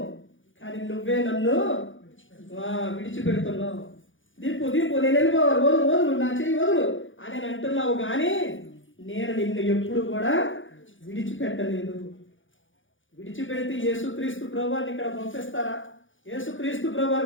కానీ నువ్వే నన్ను విడిచిపెడుతున్నావు. దీపు నేను వెళ్ళిపోవాలి, వదులు నా చెయ్యి వదులు అని అంటున్నావు, కానీ నేను నిన్ను ఎప్పుడు కూడా విడిచిపెట్టలేదు. విడిచిపెడితే యేసుక్రీస్తు ప్రభువారిని ఇక్కడ పంపిస్తారా? యేసుక్రీస్తు ప్రభువారు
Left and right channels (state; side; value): late; right; 0.57 ms